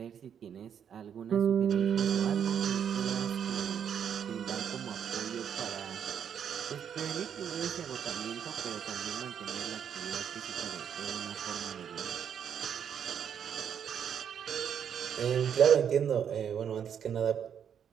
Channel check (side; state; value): left; quieter; 8.3 dB